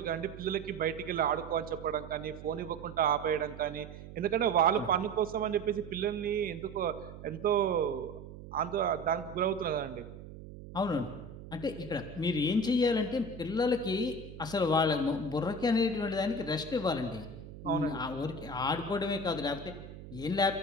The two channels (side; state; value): right; noise; hum, 14 dB below the sound